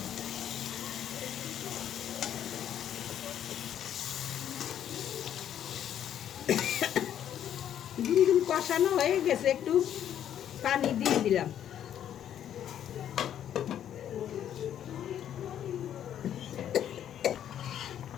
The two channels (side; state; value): right; quieter; 10.2 dB